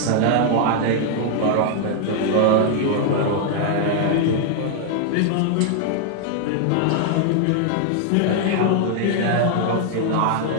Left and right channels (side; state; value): both; different; correlation 0.00